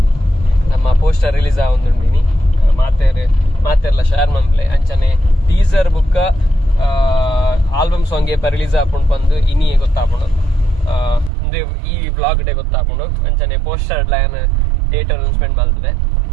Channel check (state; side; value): drops out; left; at 11.3 s